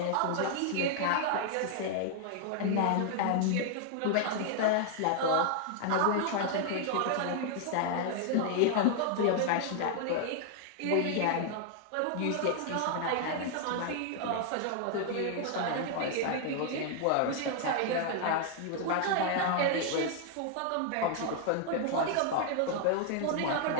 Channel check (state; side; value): different; both; correlation 0.00